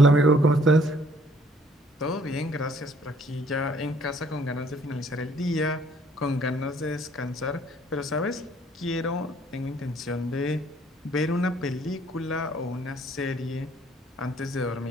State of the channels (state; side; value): normal; both; correlation 0.61